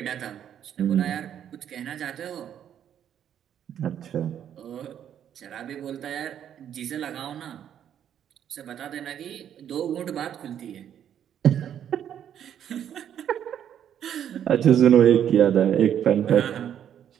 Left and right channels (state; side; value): quieter; left; 9.7 dB